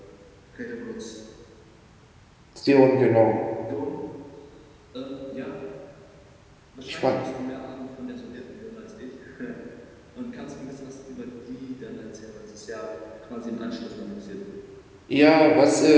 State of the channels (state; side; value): identical; both; correlation 1.00